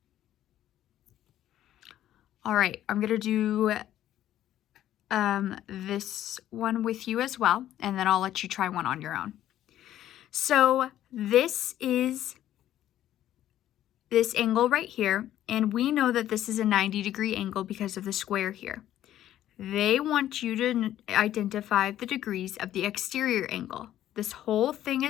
All right, I'm going to do this one with you as well, and then I'll let you try one on your own. So this is this angle right here, and we know that this is a 90-degree angle because of the square here. They want you to identify the degrees of the exterior angle. This whole thing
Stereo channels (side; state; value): right; quieter; 12.3 dB